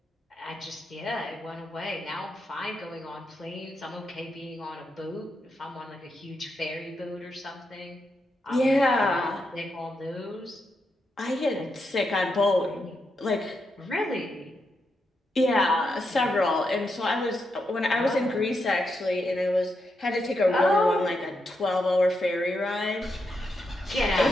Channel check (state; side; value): normal; both; correlation 0.84